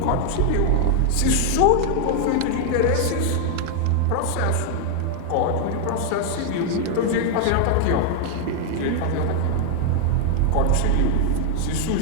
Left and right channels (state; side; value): different; both; correlation 0.00